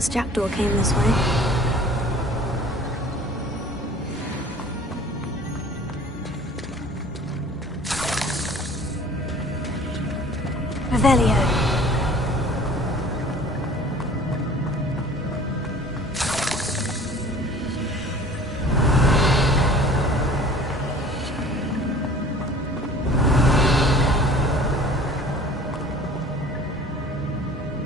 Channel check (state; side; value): normal; both; correlation 0.47